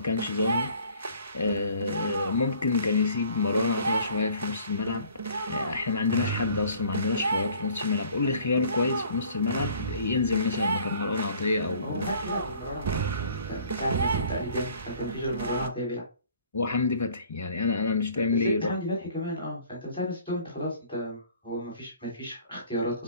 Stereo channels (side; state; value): both; inverted; correlation -0.54